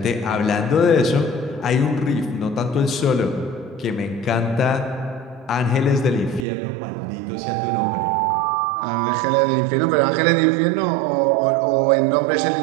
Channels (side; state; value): left; drops out; at 6.5 s